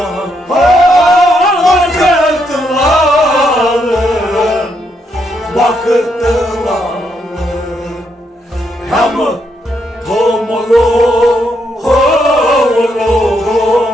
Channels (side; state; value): both; normal; correlation 0.77